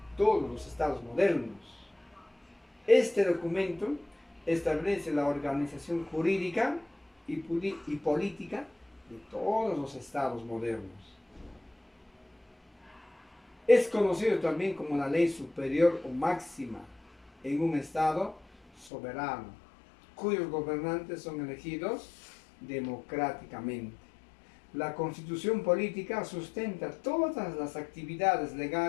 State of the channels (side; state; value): right; drops out; at 18.9 s